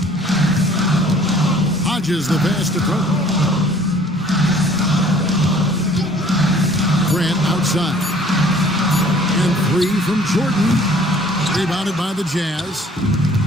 Hodges the pass to throw. Grant outside. And 3 from Jordan. Rebounded by the Jazz.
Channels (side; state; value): both; normal; correlation 0.54